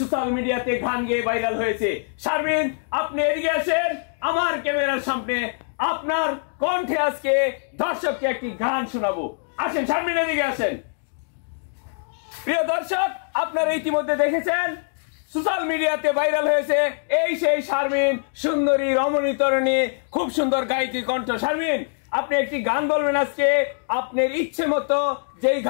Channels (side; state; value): right; silent; digital silence